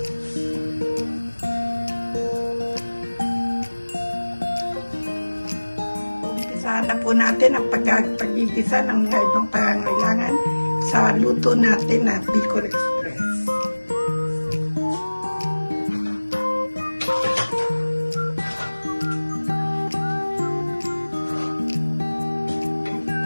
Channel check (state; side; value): inverted; both; correlation -1.00